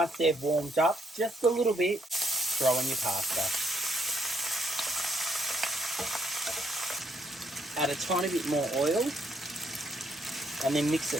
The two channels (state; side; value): normal; both; correlation 0.73